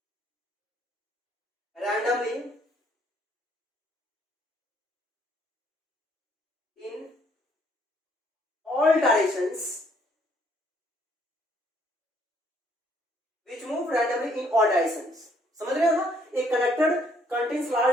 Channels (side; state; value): both; normal; correlation 0.66